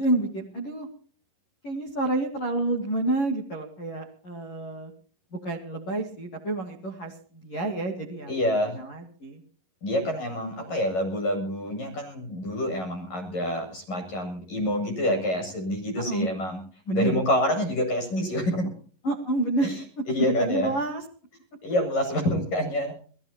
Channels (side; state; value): right; late; 11 ms